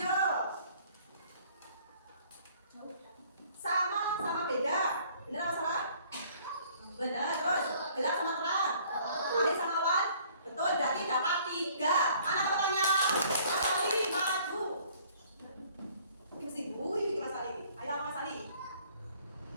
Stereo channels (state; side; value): inverted; both; correlation -0.57